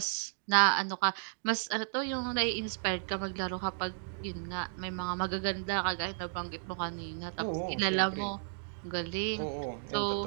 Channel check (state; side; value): silent; left; digital silence